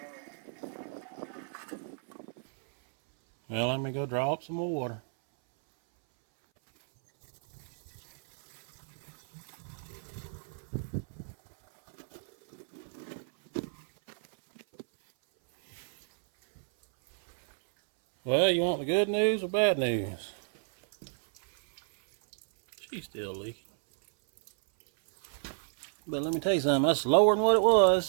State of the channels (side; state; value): left; silent; 57 dB below the other